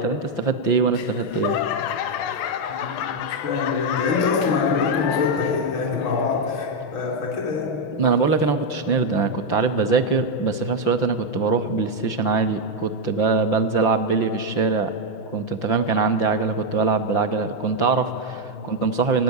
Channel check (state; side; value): late; right; 5.8 ms